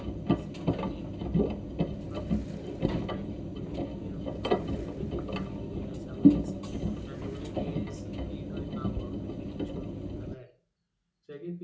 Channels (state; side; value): identical; both; correlation 1.00